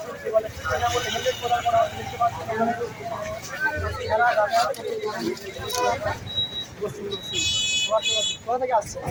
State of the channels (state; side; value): identical; both; correlation 1.00